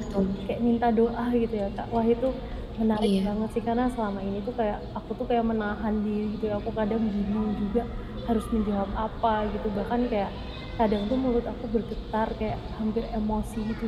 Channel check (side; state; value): both; identical; correlation 1.00